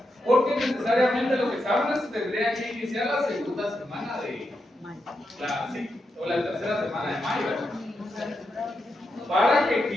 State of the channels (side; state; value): both; normal; correlation 0.85